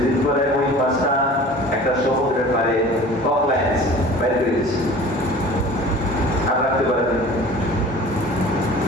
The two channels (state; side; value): normal; both; correlation 0.43